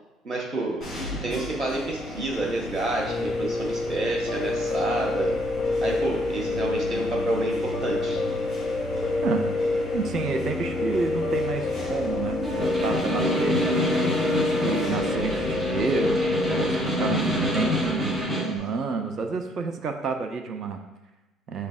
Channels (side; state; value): both; normal; correlation 0.67